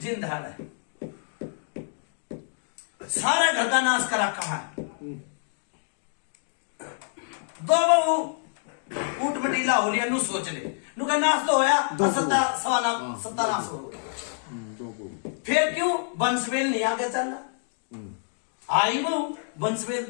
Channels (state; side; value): silent; right; digital silence